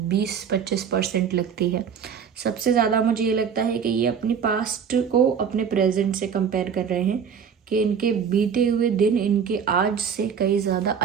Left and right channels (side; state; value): left; quieter; 7.1 dB